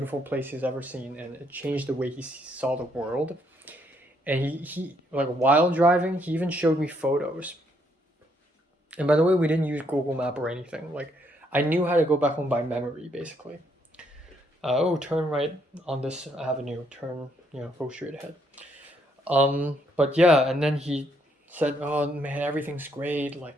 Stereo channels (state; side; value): normal; both; correlation 0.72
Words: place he's ever seen, and it changed the way he saw the world. And he like while driving, he even showed me photos. And by the way, we didn't use Google Map or anything. Like I knew how to go back home by memory, basically. Oh, turn right on this avenue. Turn, you know, go straight ahead. But yeah, and then he said, "Oh man, everything's great.